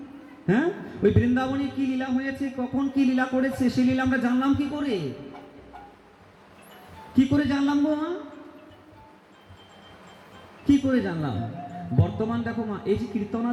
হ্যাঁ, ওই বৃন্দাবনে কি লীলা হয়েছে, কখন কি লীলা করেছে, সেই লীলা আমরা জানলাম কি করে? কি করে জানলাম গো মা? কি করে জানলাম? বর্তমান দেখো মা, এই যে কীর্তন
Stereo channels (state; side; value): identical; both; correlation 1.00